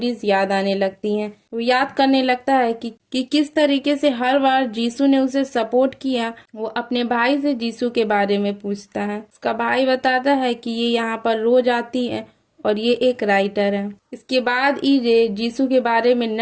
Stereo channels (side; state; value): both; identical; correlation 1.00